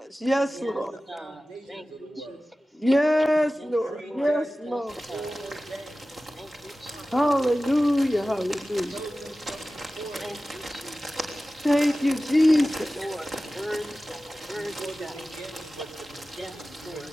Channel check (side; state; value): both; normal; correlation 0.96